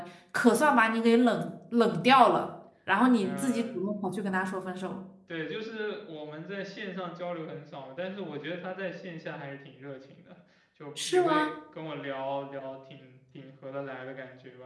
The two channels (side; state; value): both; identical; correlation 1.00